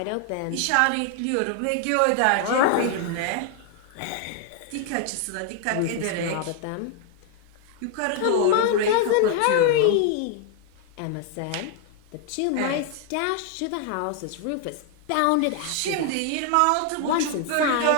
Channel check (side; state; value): both; different; correlation 0.00